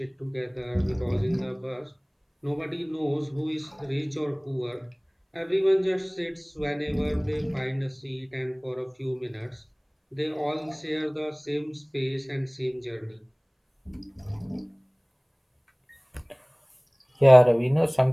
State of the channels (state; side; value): identical; both; correlation 1.00